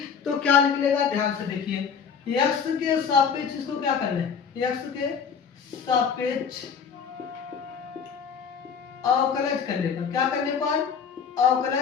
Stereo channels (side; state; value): right; quieter; 6.6 dB